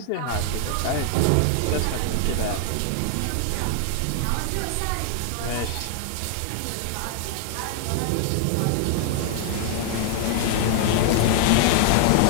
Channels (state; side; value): different; both; correlation 0.00